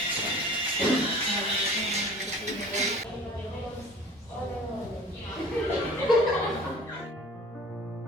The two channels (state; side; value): normal; both; correlation 0.45